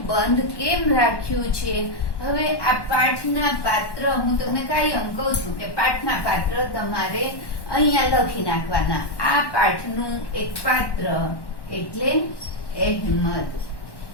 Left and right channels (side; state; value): right; late; 1.1 ms